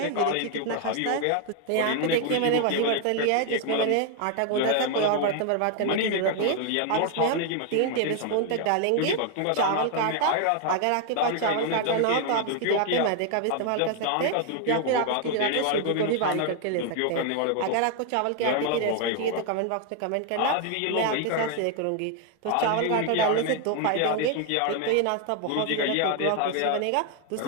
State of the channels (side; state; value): both; different; correlation 0.00